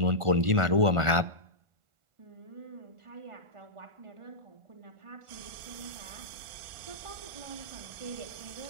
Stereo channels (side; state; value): left; late; 1.4 ms